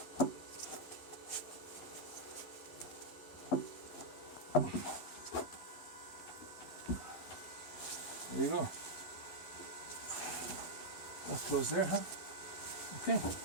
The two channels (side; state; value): right; late; 11 ms